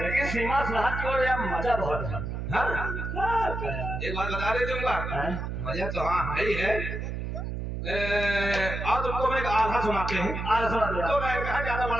लेकिन सीमा सरहद की ओर यार मजा बहुत है। हाँ क्या यार? एक बात बता दे दूंगा हैं? मजा तो हाँ है ही है। और तुमको मैं एक आधा सुनाते हैं। आज सुना दिया। तो मैं कहा ज्यादा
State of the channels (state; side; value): noise; right; hum, 4 dB below the sound